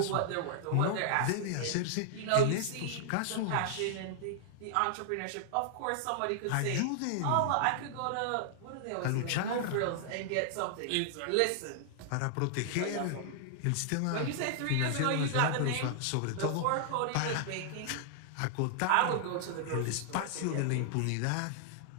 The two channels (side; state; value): both; different; correlation -0.01